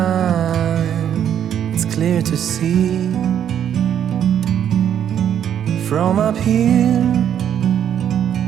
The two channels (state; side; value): quieter; left; 9.5 dB